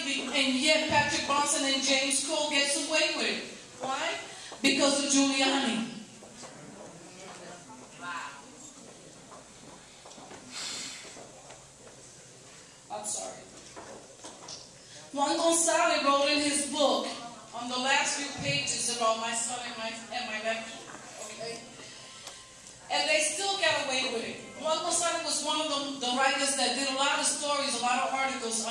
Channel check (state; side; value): identical; both; correlation 1.00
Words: and yet Patrick Bronson and James Crow gets away with it? Why? Because of Giuliani. I'm sorry. Juan Gonzalez wrote in his book on the last few pages about my son and my nephew, okay? And they still got away with it. Juan Gonzalez was one of the writers that did a lot of stories, a lot of articles